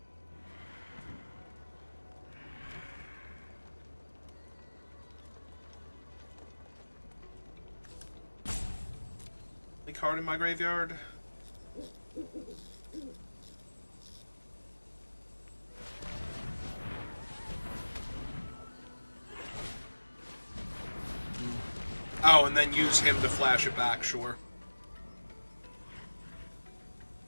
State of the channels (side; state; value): both; inverted; correlation -1.00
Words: Any card in my graveyard? Oh, and then use him to flash it back, sure.